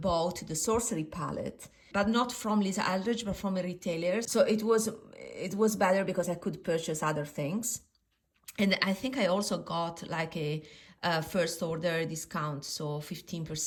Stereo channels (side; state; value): both; identical; correlation 1.00